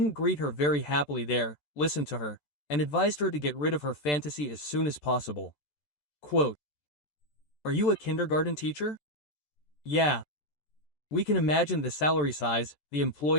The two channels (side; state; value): right; late; 14 ms